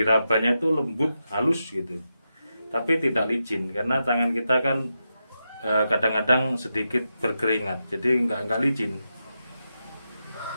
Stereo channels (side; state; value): both; inverted; correlation -0.88